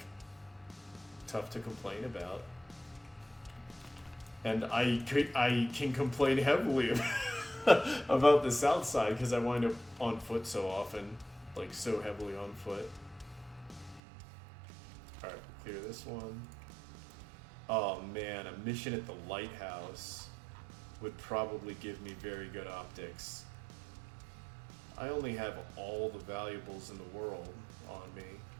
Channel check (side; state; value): left; drops out; at 14.0 s